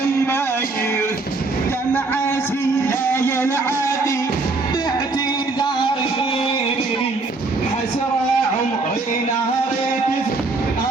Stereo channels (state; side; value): quieter; left; 3.5 dB